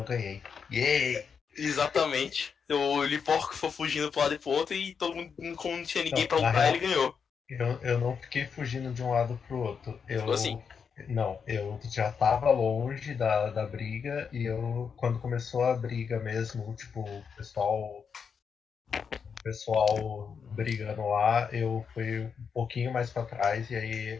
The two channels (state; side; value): quieter; right; 6.3 dB